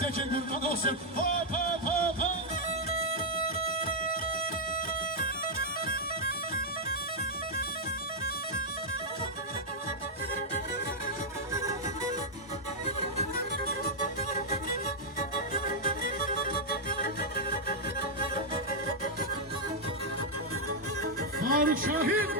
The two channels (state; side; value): normal; both; correlation -0.04